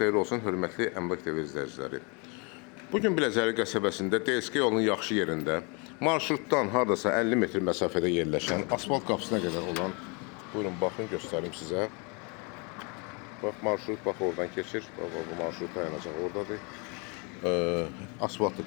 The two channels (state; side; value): quieter; right; 32.5 dB